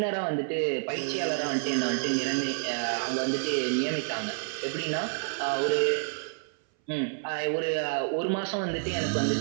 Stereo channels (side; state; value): left; silent; 59 dB below the other